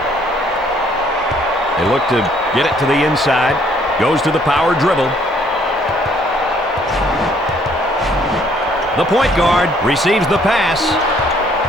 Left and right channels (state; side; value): normal; both; correlation 0.63